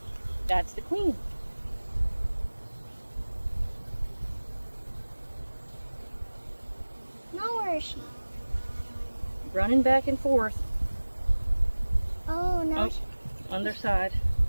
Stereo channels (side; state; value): both; inverted; correlation -1.00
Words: That's the queen. Now where is she? Running back and forth. Oh, no. On their side.